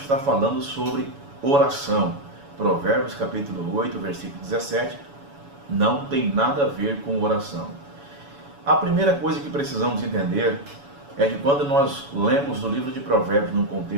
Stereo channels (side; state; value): left; late; 7.1 ms